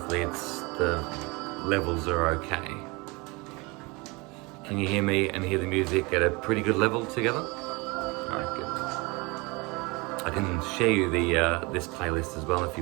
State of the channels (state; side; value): quieter; left; 26.5 dB